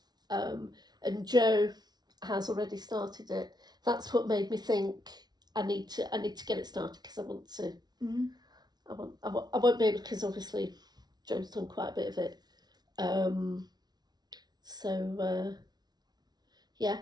And Jo has already started it. That's what made me think I need to get it started, because I want to. I won't be able, because obviously Jo's done quite a bit of it. Yeah.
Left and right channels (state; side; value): late; left; 0.19 ms